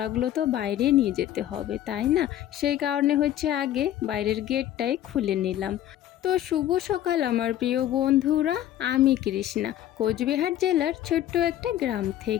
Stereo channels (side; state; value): right; quieter; 12.2 dB